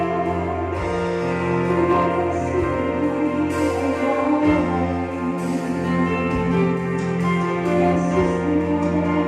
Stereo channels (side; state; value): both; identical; correlation 1.00